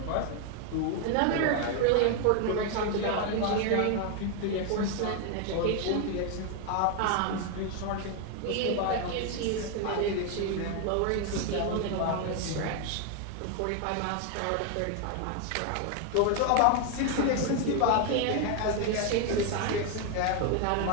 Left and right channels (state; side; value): different; both; correlation 0.01